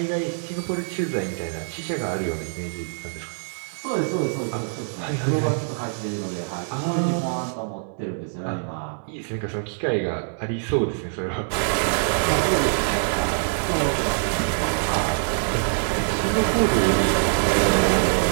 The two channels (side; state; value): left; silent; 62 dB below the other